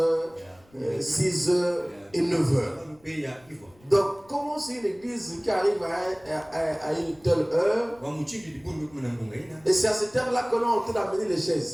6h et 9h. Donc, comment c'est une église qui arrive à une telle heure? Et c'est à cette heure-là qu'on est en train d'amener les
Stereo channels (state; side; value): noise; left; rumble, 30 dB below the sound